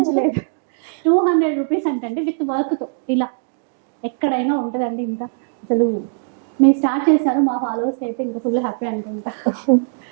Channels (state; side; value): silent; left; digital silence